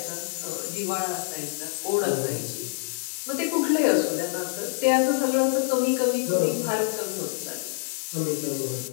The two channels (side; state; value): right; silent; digital silence